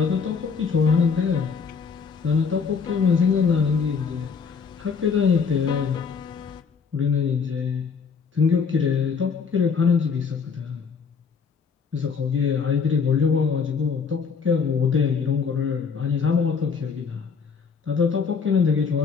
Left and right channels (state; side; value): quieter; right; 5.8 dB